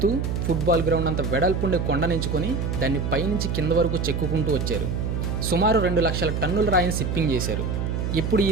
ఫుట్బాల్ గ్రౌండ్ అంత వెడల్పుండే కొండనించుకొని దాన్ని పైనుంచి కింద వరకు చెక్కుకుంటూ వచ్చారు. సుమారు 2 లక్షల టన్నుల రాయిని షిప్పింగ్ చేశారు. ఇప్పుడు ఈ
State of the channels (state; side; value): noise; right; hum, 1 dB below the sound